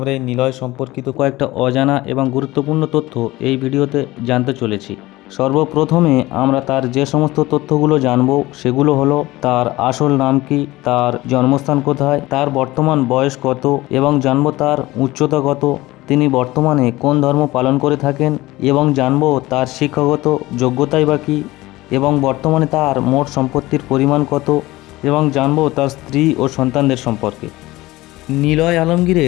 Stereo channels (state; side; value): quieter; right; 18.8 dB